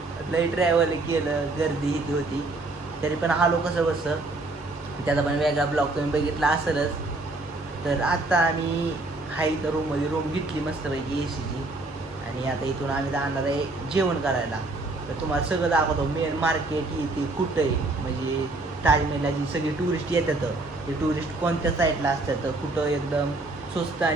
लई ट्रॅव्हल केलं, गर्दी इथे होती तरी पण आलो कसं बसं. त्याचा पण वेगळा ब्लॉग तुम्ही बघितला असेलच. तर आता आम्ही हाय तर रूम घेतली मस्तपैकी एसीची आणि आता इथून आम्ही जाणार आहे जेवण करायला. तर तुम्हाला सगळं दाखवतो. मेन मार्केट इथे कुठं आहे, म्हणजे ताजमहलला जी सगळी टुरिस्ट येतात ते टुरिस्ट कोणत्या साईडला असतात, कुठं एकदम स्वस्त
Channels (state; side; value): quieter; left; 3.1 dB